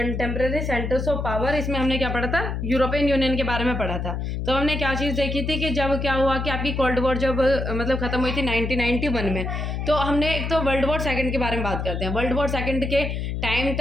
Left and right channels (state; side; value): noise; left; hum, 3 dB below the sound